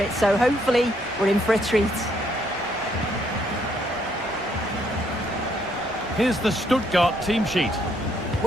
so hopefully we're in for a treat. Here's the Stuttgart team sheet.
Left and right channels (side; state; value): both; normal; correlation 0.71